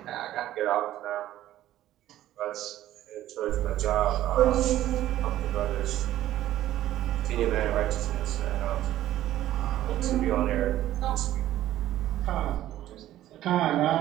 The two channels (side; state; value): left; quieter; 13.5 dB